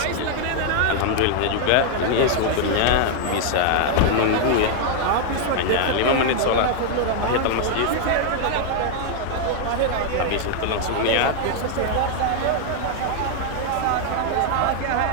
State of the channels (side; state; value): both; different; correlation 0.00